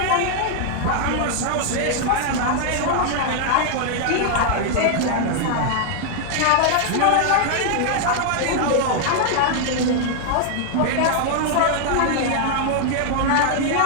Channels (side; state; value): both; different; correlation 0.00